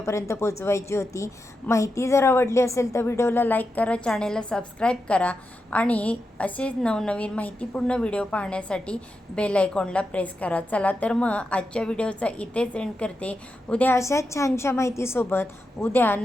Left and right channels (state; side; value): normal; both; correlation 0.88